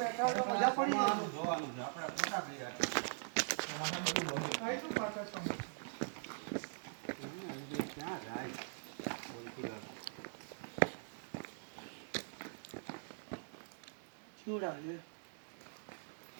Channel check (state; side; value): silent; left; digital silence